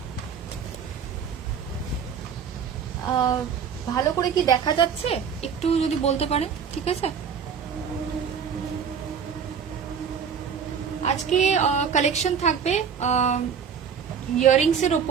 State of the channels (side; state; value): left; quieter; 7.0 dB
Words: ভালো করে কি দেখা যাচ্ছে একটু যদি বলতে পারেন, ঠিক আছে? আজকে কালেকশন থাকবে ইয়ারিংস এর